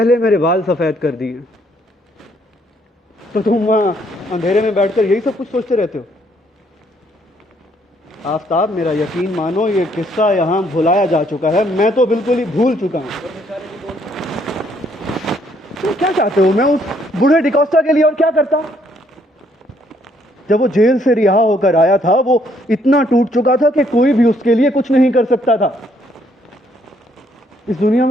मेरे बाल सफेद कर दिए। तो तुम वहां अंधेरे में बैठकर यही सब कुछ सोचते रहते हो? आफताब, मेरा यकीन मानो, ये किस्सा यहां भुलाया जा चुका है। मैं तो बिल्कुल ही भूल चुका हूं। तुम क्या चाहते हो? मैं उस बूढ़े डिकोस्टा के लिए और क्या करता? जब वो जेल से रिहा होकर आया था, वो इतना टूट चुका था कि कोई भी उसके लिए कुछ नहीं कर सकता था। इस दुनिया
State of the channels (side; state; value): both; normal; correlation 0.68